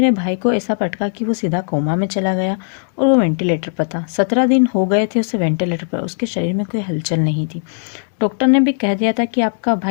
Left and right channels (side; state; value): right; silent; digital silence